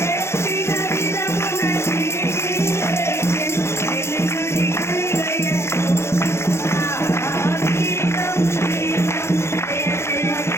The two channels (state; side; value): late; right; 0.13 ms